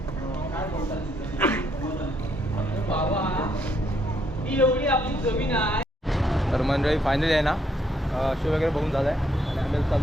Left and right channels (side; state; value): both; normal; correlation 0.72